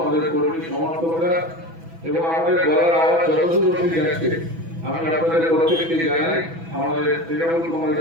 কর্মী সমর্থকরা এবং আমাদের গলার আওয়াজ যতদূর অবধি যাচ্ছে আমি আপনাদের প্রত্যেককে জানাই আমাদের তৃণমূল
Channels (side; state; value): left; late; 6.1 ms